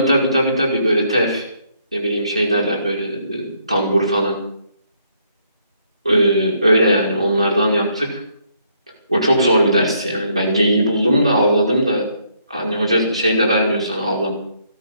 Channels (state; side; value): inverted; both; correlation -0.71